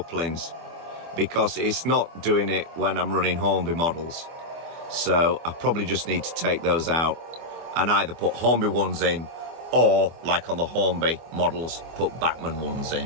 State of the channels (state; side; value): late; left; 24 ms